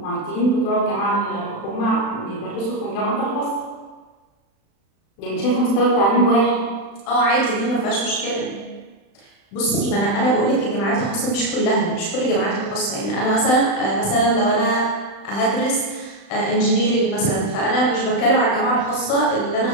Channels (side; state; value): right; late; 36 ms